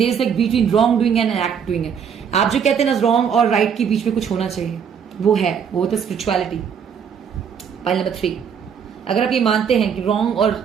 is like between wrong doing and act doing है। आप जो कहते हैं ना रॉन्ग और राइट के बीच में कुछ होना चाहिए, वो है, वो तो स्पिरिचुअलिटी। पाइल नंबर 3, अगर आप ये मानते हैं कि रॉन्ग और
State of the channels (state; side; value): quieter; left; 7.3 dB